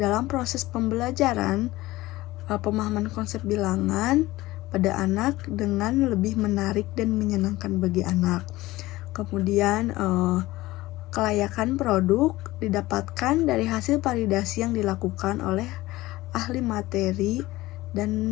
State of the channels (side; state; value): right; quieter; 18.3 dB